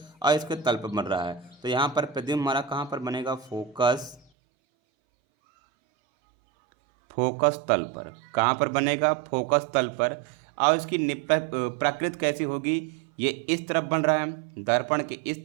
और इसके तल पर बन रहा है, तो यहाँ पर प्रतिबिंब हमारा कहाँ पर बनेगा? फोकस तल पर। कहाँ पर बनेगा? फोकस तल पर। और इसकी प्रकृति कैसी होगी? ये इस तरफ बन रहा है, दर्पण के इस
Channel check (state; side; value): drops out; left; at 4.2 s